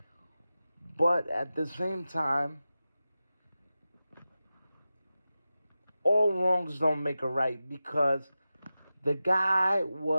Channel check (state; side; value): inverted; both; correlation -0.94